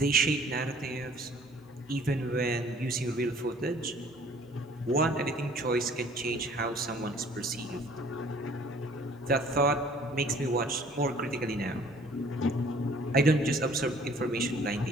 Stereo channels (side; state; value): both; normal; correlation 0.54